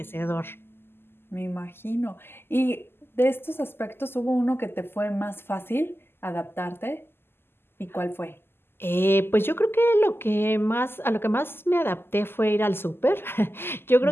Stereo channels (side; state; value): right; late; 0.11 ms